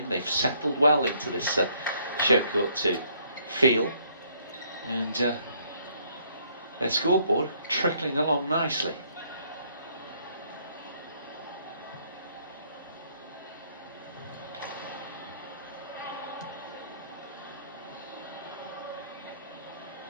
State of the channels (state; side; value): inverted; both; correlation -0.66